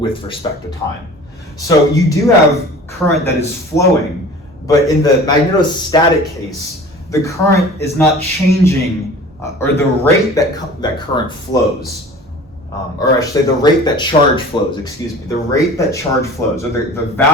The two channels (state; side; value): normal; both; correlation 0.42